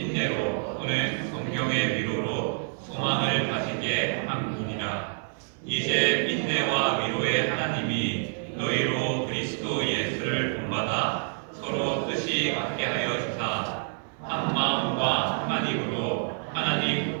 또는 성경의 위로로 소망을 가지게 함이니라. 이제 인내와 위로의 하나님이 너희로 그리스도 예수를 본받아 서로 뜻이 같게 하여 주사 한 마음과 한 입으로 하나님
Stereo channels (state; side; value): silent; left; 57 dB below the other